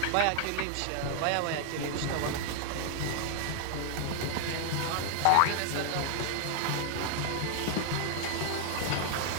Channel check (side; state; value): both; different; correlation 0.00